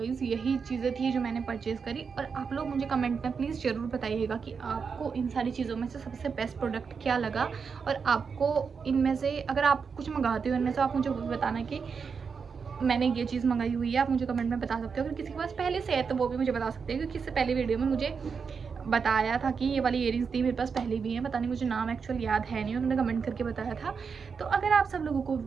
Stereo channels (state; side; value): quieter; left; 5.7 dB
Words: यही चीज़ें थी जो मैंने परचेज़ करी। और आप लोग मुझे कमेंट में प्लीज़ ज़रूर बताइएगा कि आपको इन सारी चीज़ों में से सबसे बेस्ट प्रोडक्ट क्या लगा। और आपको इनमें से अगर आप कुछ मंगाते हो इनमें से, आप मुझे बताना कि मैंने ये चीज़ मंगाई हुई है, आप मुझे कमेंट में बता सकते हो। अगर किसी के पास पहले से है तो वो भी मुझे बता सकते हैं, क्योंकि इससे पहले वीडियो में मुझे बताया था कि ये वाली इयरिंग्स थी मेरे पास पहले भी हैं, पता नहीं मुझे नाम एक्चुअल याद है नहीं, उन्होंने कमेंट करके बताया था। तो अगर आप सब लोगों को